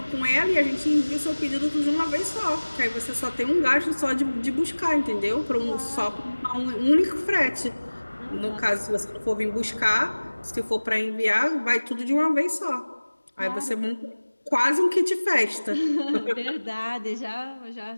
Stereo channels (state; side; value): inverted; both; correlation -1.00